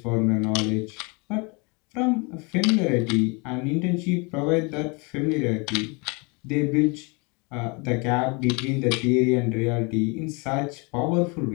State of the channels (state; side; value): quieter; right; 30.6 dB